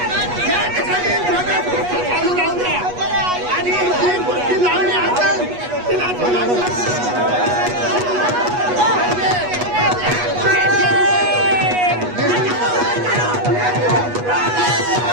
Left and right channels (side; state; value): left; late; 8.3 ms